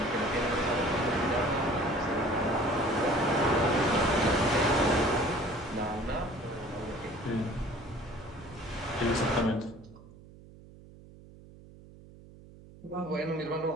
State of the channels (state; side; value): noise; right; hum, 21 dB below the sound